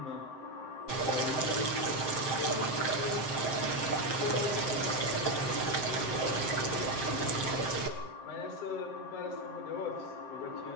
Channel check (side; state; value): right; late; 7.7 ms